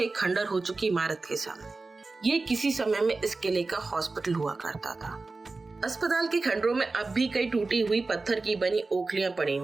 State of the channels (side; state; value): left; quieter; 3.6 dB